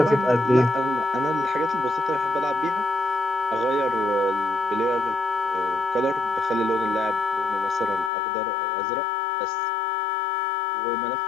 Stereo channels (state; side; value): drops out; right; at 8.1 s